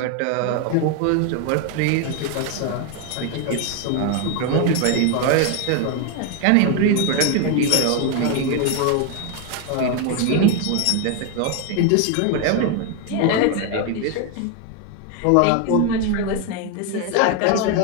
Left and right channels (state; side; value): different; both; correlation 0.01